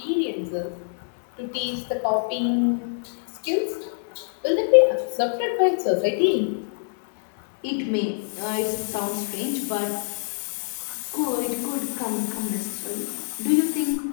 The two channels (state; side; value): silent; right; digital silence